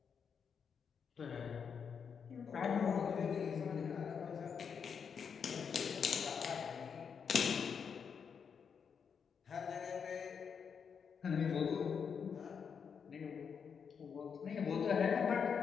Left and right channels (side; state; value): right; quieter; 6.6 dB